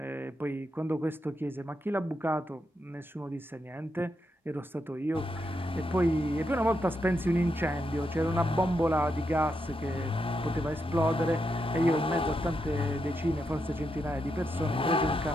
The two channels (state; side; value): normal; both; correlation 0.83